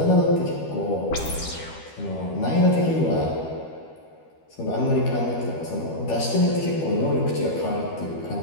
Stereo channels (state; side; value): late; right; 12 ms